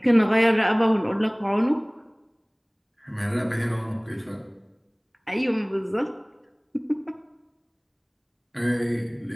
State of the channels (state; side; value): identical; both; correlation 1.00